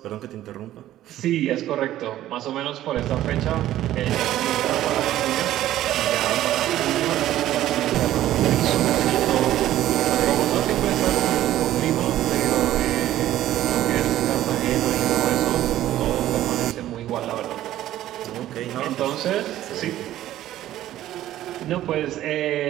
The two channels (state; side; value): quieter; left; 13.4 dB